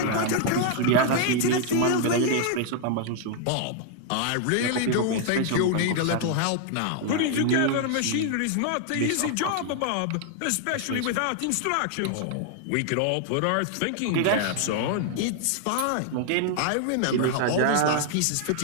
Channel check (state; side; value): different; both; correlation 0.00